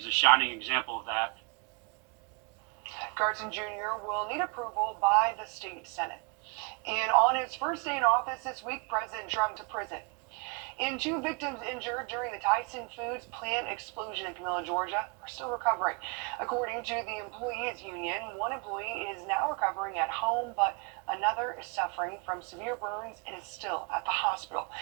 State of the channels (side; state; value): left; quieter; 32.7 dB